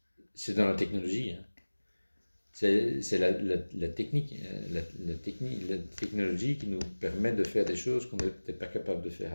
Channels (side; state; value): both; inverted; correlation -1.00